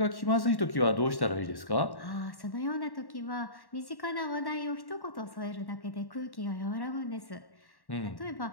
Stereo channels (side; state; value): right; late; 1.1 ms